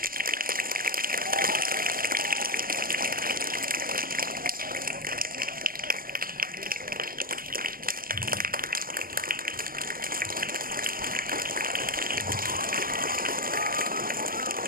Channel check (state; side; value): late; left; 0.41 ms